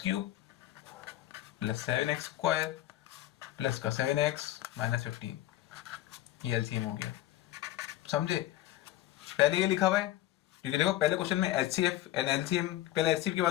cube plus 7x square plus का 7x माइनस 15, ये एलसीएम हो गया, समझे। पहले ये लिखा हुआ है क्योंकि देखो पहले क्वेश्चन में एचसीएफ एंड एलसीएम, पहले एचसीएफ की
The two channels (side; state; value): right; quieter; 14.5 dB